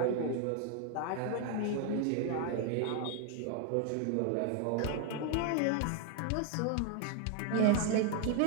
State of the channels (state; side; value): different; both; correlation 0.01